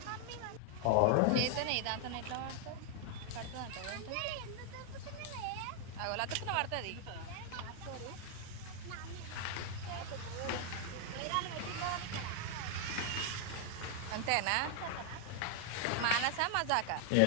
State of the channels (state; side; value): different; both; correlation 0.00